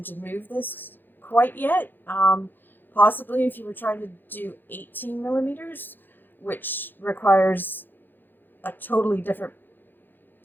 to move this quite yet. Possibly if you were trying to do 18 millimeters, which requires a totally different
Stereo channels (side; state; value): right; late; 0.093 ms